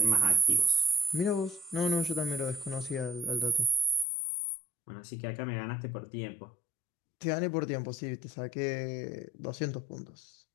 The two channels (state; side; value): drops out; right; at 4.0 s